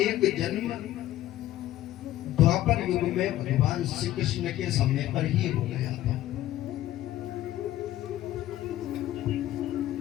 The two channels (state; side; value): quieter; right; 14.0 dB